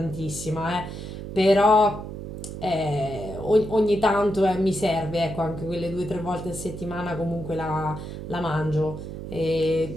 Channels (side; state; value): right; noise; hum, 9 dB below the sound